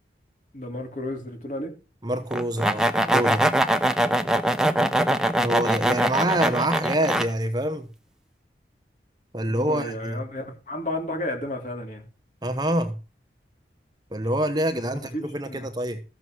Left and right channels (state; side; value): normal; both; correlation 0.69